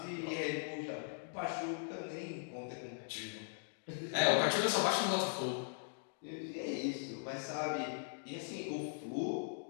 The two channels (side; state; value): right; silent; digital silence